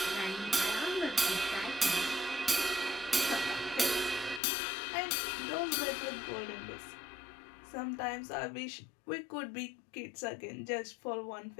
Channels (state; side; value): drops out; right; at 4.4 s